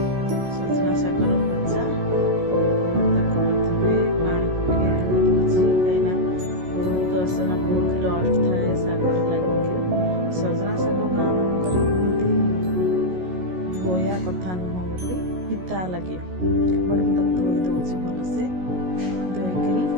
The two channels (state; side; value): late; left; 16 ms